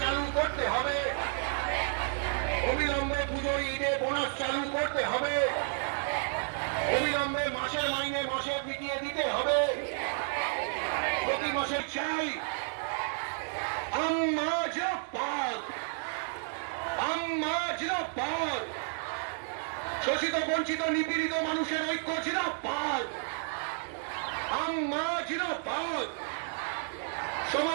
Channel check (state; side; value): silent; left; 57 dB below the other